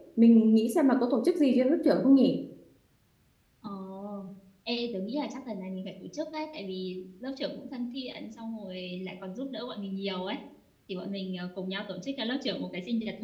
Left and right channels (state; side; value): identical; both; correlation 1.00